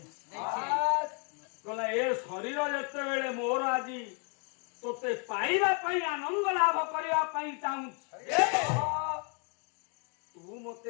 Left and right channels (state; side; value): quieter; right; 36.4 dB